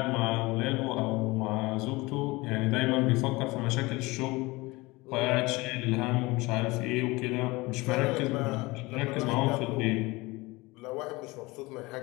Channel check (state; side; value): quieter; right; 22.5 dB